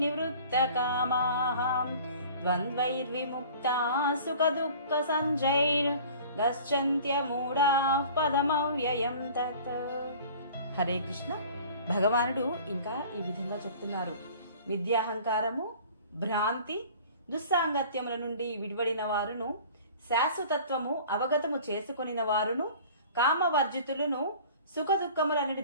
కామాః ద్వంద్వైర్విముక్తా సుఖ దుఃఖ సంజైర్ గచ్చంత్యమూఢా పదమవ్యయం తత్. హరే కృష్ణ. భగవానుడు ఇంకా ఈ విధంగా చెప్తున్నారు. విద్యాహంకారము, భ్రాంతి, దుస్సాంగత్యముల నుండి విడివడిన వారును, శాశ్వతత్వము అవగతము చేసుకొనిన వారును, కామవర్జితులను, సుఖ దుఃఖములనటి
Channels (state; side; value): inverted; both; correlation -0.46